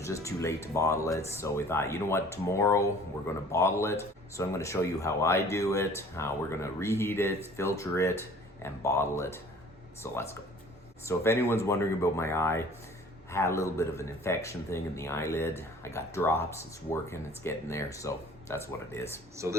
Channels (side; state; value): both; normal; correlation 0.50